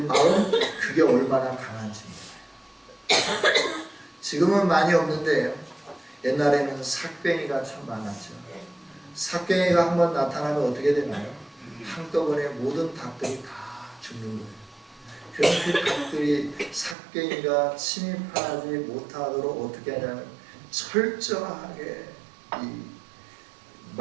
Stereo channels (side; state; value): left; drops out; at 16.9 s